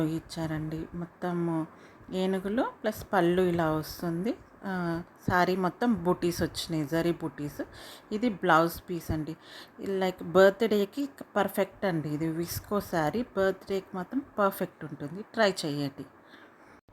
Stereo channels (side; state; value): both; identical; correlation 1.00